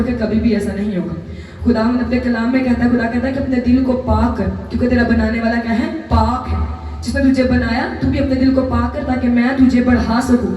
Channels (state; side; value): identical; both; correlation 1.00